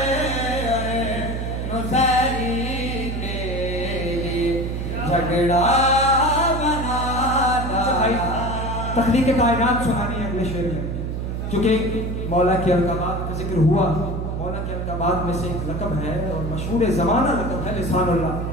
नुसैरी के लिए, झगड़ा बना डाला। तख्लीक़ कायनात सुनानी है अगले शेर में, क्योंकि मौला की अलक़ाबात का जिक्र हुआ। मौला की अलक़ाबात में से एक लक़ब है और मशहूर ज़माना लक़ब है लिसानुल्लाह।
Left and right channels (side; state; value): right; noise; hum, 3 dB below the sound